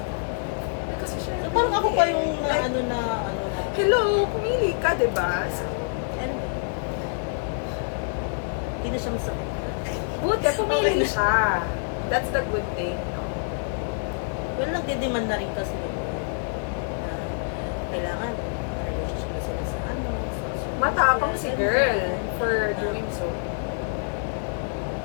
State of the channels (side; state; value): right; silent; digital silence